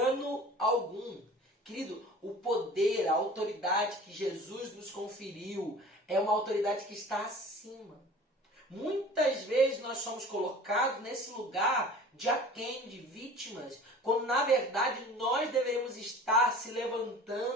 algum. Querido, o poder, a autoridade que Jesus nos conferiu é uma autoridade que está acima. Muitas vezes nós somos colocados nesse lugar de aquém, de vítimas, quando na verdade nós deveríamos estar se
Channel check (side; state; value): both; normal; correlation 0.43